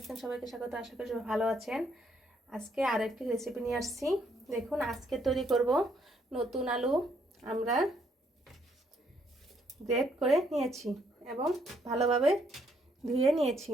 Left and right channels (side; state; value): both; normal; correlation 0.71